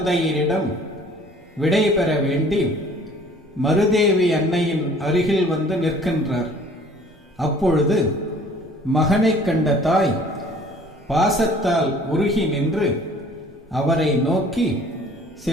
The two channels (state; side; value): normal; both; correlation 0.53